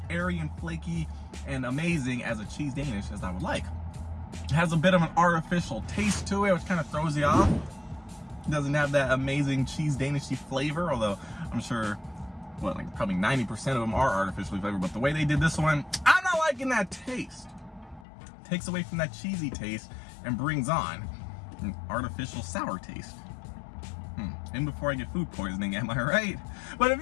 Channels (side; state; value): right; drops out; at 18.1 s